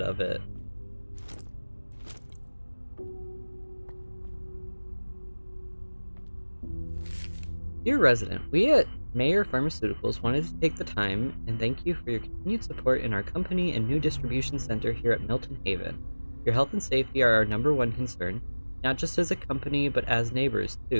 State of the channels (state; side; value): inverted; both; correlation -1.00